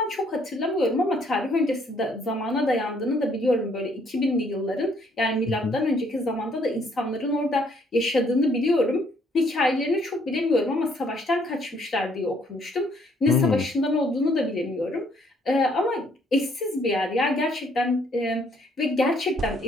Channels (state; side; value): normal; both; correlation 0.66